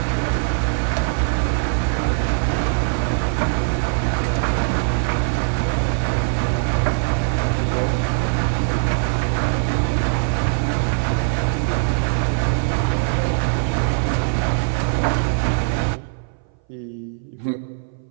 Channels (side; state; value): left; silent; 61 dB below the other